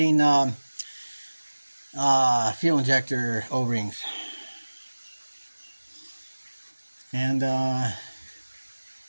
fuel injector O-rings. And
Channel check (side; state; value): both; inverted; correlation -1.00